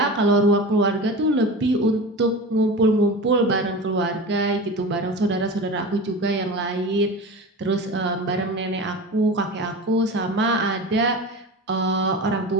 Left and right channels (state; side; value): normal; both; correlation 0.30